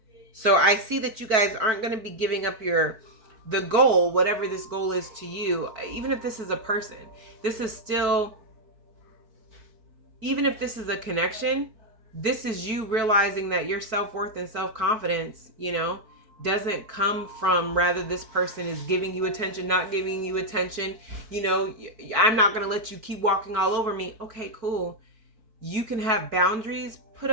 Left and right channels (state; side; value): late; left; 4.6 ms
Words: So I see that you guys aren't going to be giving up the goal, whatever this goal is to you. Even if this is a person, this is still, even if this is a connection, this is you realizing that your self-worth and self-confidence, you know, doesn't come from rather this person is giving you attention, not giving you attention. You know, I'm not going to let you keep walking all over me. Okay, cool. You can have boundaries put